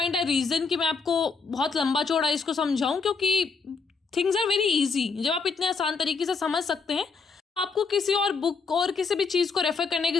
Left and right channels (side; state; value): right; quieter; 4.8 dB